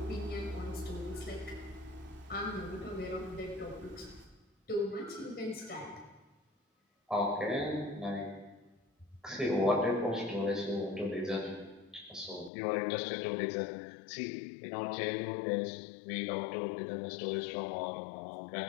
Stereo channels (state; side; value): drops out; right; at 12.5 s